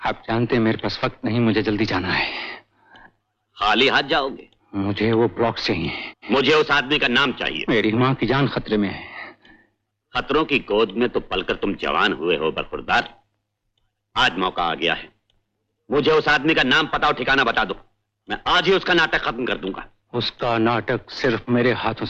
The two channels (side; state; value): both; identical; correlation 1.00